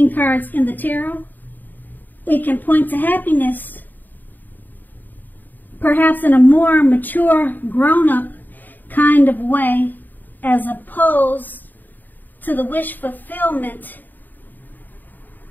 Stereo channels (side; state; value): right; late; 0.088 ms